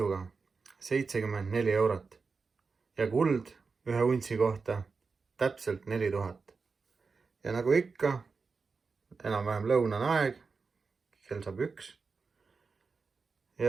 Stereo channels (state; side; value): quieter; left; 4.7 dB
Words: 74 eurot ja kuld ühe untsi kohta täpselt 4000. Ja nagu ikka, enam-vähem lõunane aeg, kell saab 1.